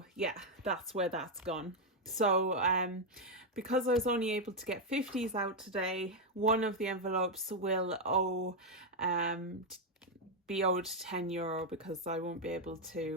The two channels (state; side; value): normal; both; correlation 0.02